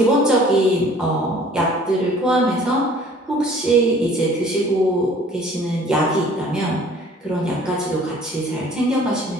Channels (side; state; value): both; normal; correlation 0.52